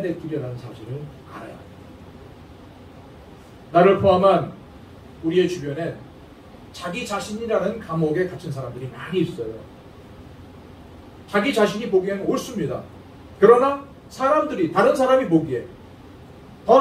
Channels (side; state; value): both; identical; correlation 1.00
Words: 될 길이라는 사실을 알아야 합니다. 나를 포함한 우리의 주변에 자기 자신이라는 감옥에 갇힌 사람들이 많이 있어요. 자기 자신이 보기에는 옳습니다. 그러나 사람들이, 다른 사람이 보기에, 더